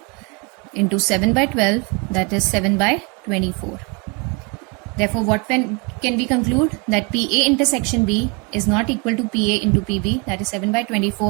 into 7 by 12, that is 7 by 24. Therefore, what can we conclude? That PA intersection B is not equal to PA into PB, that is 7 by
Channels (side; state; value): left; quieter; 31.1 dB